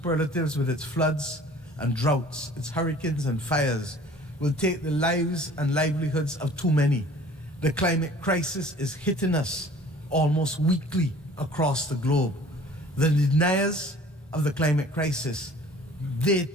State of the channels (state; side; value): normal; both; correlation 0.49